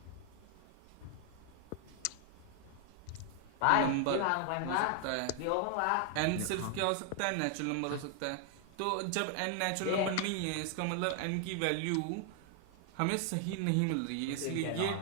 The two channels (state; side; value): different; both; correlation 0.00